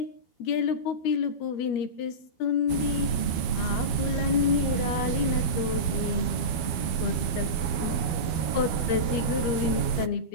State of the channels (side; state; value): right; late; 13 ms